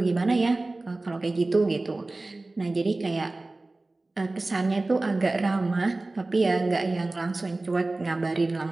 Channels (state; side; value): quieter; left; 3.0 dB